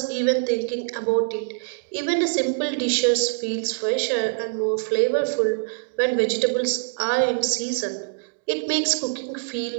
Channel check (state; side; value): silent; left; digital silence